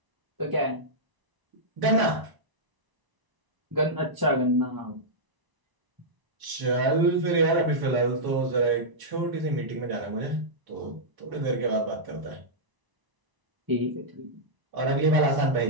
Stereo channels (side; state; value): left; late; 1.0 ms